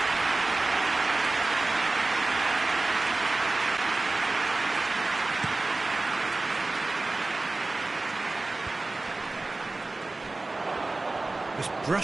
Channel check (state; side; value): quieter; left; 3.2 dB